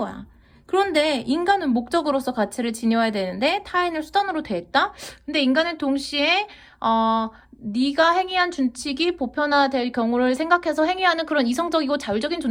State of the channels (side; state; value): both; identical; correlation 1.00